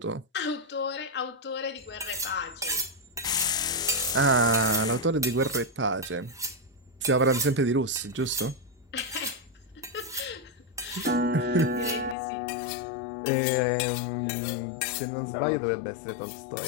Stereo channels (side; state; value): right; drops out; at 12.2 s